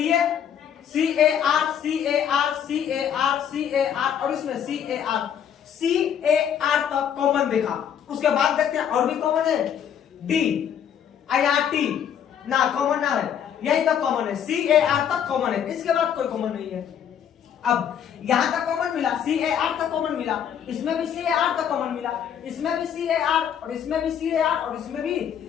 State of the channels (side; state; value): right; quieter; 8.8 dB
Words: A, C A R, C A R, C A R, C A R, और इसमें C A R, C A R तक कॉमन देखा। उसके बाद देखते हैं और भी कॉमन है, डी आई आर टी ना कॉमन ना है, यही तक कॉमन है, सी ए आर तक कॉमन है, इसके बाद कोई कॉमन नहीं है। अब यहां तक कॉमन मिला, सी ए आर तक कॉमन मिला, इसमें भी सी ए आर तक कॉमन मिला, इसमें भी सी ए आर, और इसमें भी सी ए आर, और इसमें भी